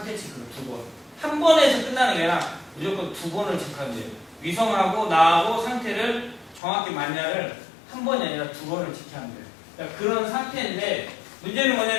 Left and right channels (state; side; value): drops out; right; at 6.6 s